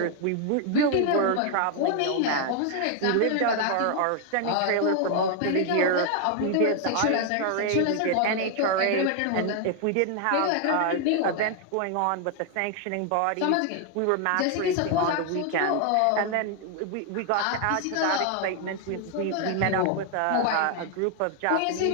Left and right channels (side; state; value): both; different; correlation 0.00